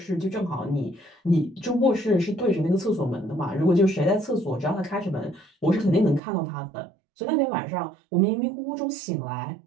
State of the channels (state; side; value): drops out; left; at 6.2 s